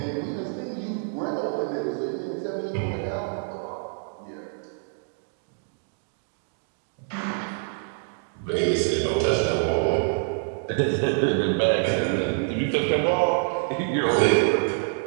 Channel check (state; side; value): silent; left; digital silence